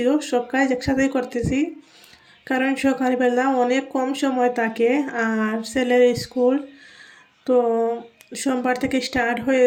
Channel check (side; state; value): both; identical; correlation 1.00